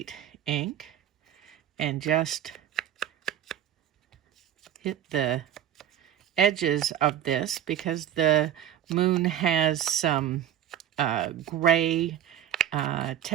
ink and just hit the edges of this because the moon has some gray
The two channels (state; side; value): quieter; left; 10.4 dB